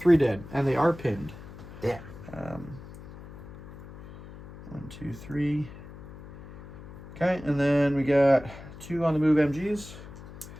dead, and they are pinned. Yeah. 1, 2, 3. Okay, and then we got 2 on the move MGs.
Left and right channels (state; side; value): noise; left; hum, 16 dB below the sound